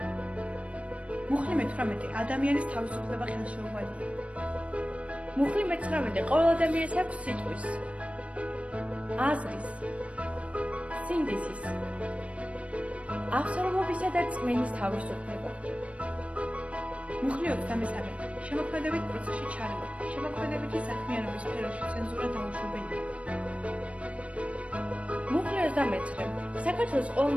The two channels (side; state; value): left; late; 0.063 ms